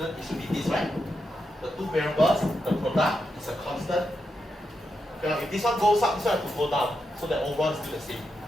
it should be this, right? The two variables, the product is a constant. Okay, if this one goes up, this one has to go down, so that overall is still the same.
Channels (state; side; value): normal; both; correlation 0.86